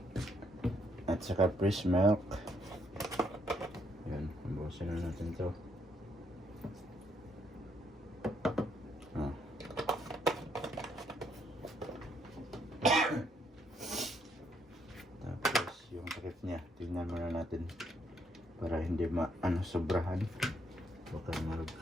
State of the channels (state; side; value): normal; both; correlation 0.72